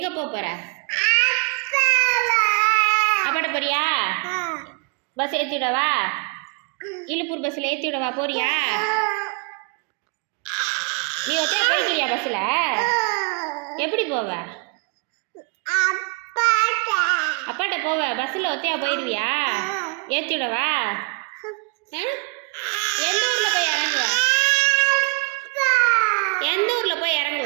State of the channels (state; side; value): quieter; left; 33.2 dB